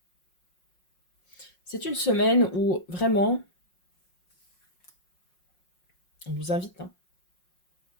C'est une semaine où, vraiment, on vous invite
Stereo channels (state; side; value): late; right; 5.5 ms